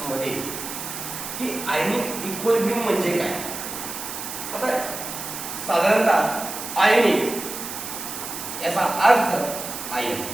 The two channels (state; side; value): noise; right; hiss, 7 dB below the sound